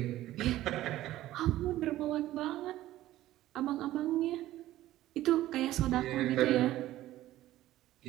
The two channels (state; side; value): quieter; left; 14.9 dB